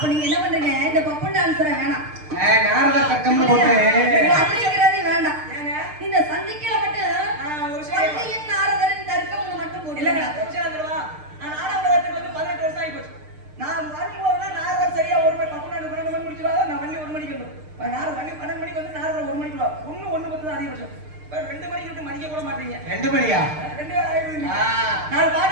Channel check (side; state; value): left; late; 6.6 ms